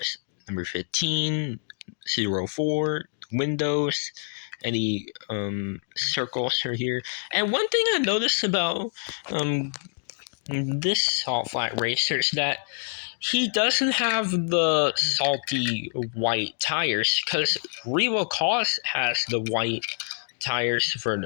Number 15, 04, windows, any circles are here. And one thing I noticed about this Salt Flat Racer is that he doesn't have the salty white tires, because Revo Koss has the white tires for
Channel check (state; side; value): silent; right; digital silence